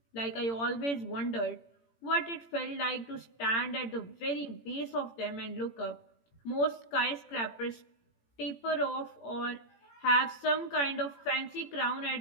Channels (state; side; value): late; right; 18 ms